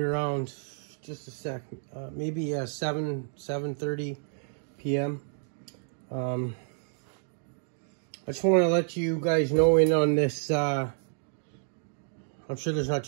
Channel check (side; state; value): left; silent; digital silence